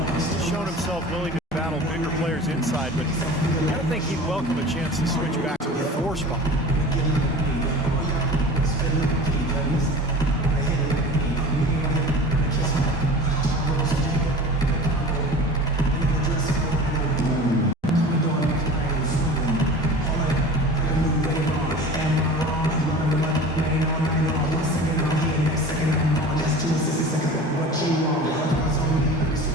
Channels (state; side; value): normal; both; correlation 0.38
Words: He's shown himself willing to battle bigger players inside, but I don't think he'd welcome a chance to switch back to the 4 spot.